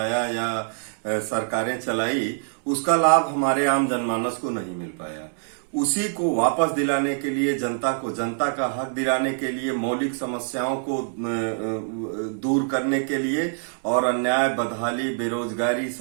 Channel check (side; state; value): left; silent; digital silence